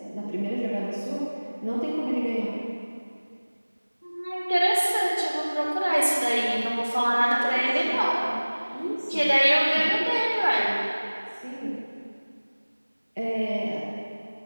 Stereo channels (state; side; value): inverted; both; correlation -1.00